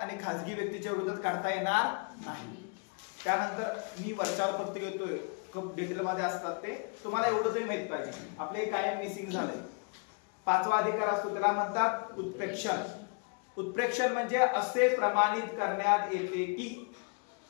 आणि खासगी व्यक्तीच्या विरोधात काढता येणार नाही. त्यानंतर मी वरच्यावर फक्त घेतोय, डिटेल मध्ये असतात ते तुम्हाला एवढं तरी माहित पाहिजे. आपले कायम मिसिंग झालंय. 5वा अधिकार असतो त्याला म्हणतात उत्प्रेक्षण. उत्प्रेक्षण म्हणजे असे प्रमाणित करण्यात येते की,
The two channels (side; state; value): right; quieter; 35.9 dB